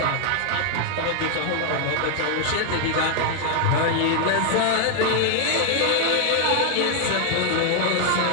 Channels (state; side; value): different; both; correlation 0.00